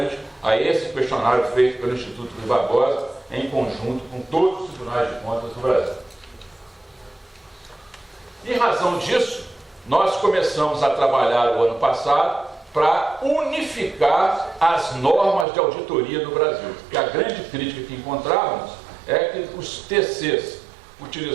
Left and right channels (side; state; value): left; drops out; at 15.5 s